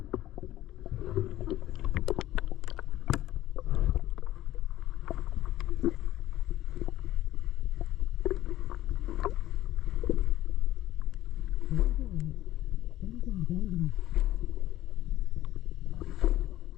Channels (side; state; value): right; quieter; 14.3 dB